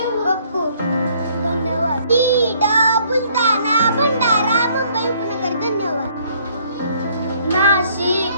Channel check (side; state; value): both; inverted; correlation -0.63